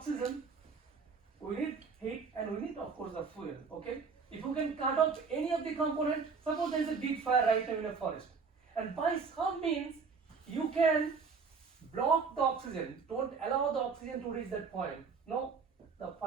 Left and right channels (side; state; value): left; quieter; 5.2 dB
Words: we need heat, and we need of course the fuel, okay? If you can cut off any of the component, suppose there is a big fire right now in a forest, and by some means you can block the oxygen, don't allow the oxygen to reach that point. No, the